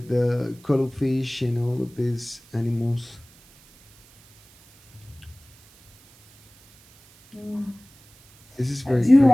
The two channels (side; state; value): right; noise; hiss, 28 dB below the sound